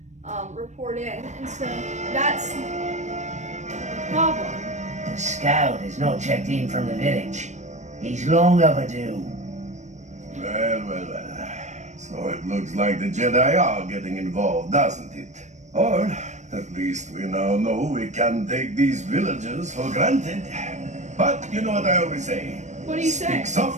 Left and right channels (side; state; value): left; late; 0.34 ms